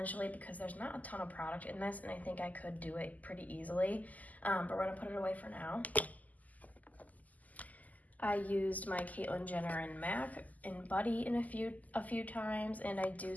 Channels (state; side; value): late; right; 0.078 ms